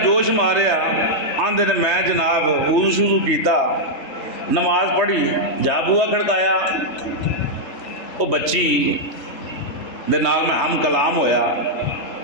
جوش ماریا، آندے نے میں جناب وضو شروع کیتا، نماز پڑھی، جا بوا کھڑکایا، وہ بچی دے نال میں ہم کلام ہویا،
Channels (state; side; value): late; right; 3.3 ms